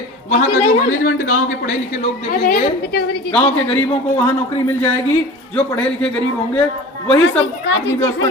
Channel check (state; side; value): normal; both; correlation 0.37